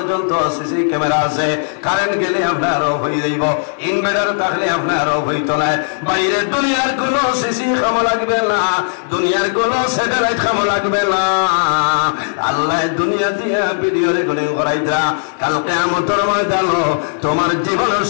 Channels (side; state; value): right; silent; 69 dB below the other